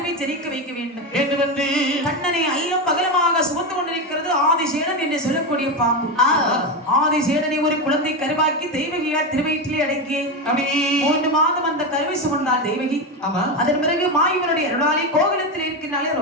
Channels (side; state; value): both; normal; correlation 0.14